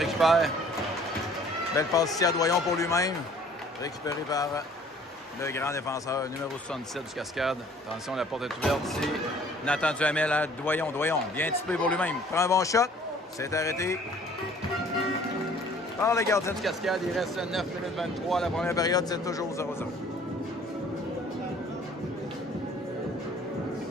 Belle passe ici à Doyon pour lui-même. Récupéré par le grand défenseur numéro 77 du Cascade. Attention, la porte est ouverte ici. Nathan Duhamel à Doyon. Doyon, bien typé pour lui-même. Prend un bon shot. C'est arrêté par le gardien du Cascade. Il reste 9 minutes 23. La première période, c'est toujours 0-0.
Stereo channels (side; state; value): both; normal; correlation 0.55